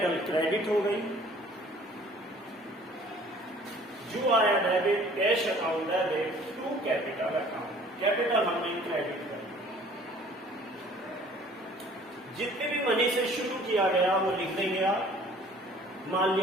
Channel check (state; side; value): normal; both; correlation 0.52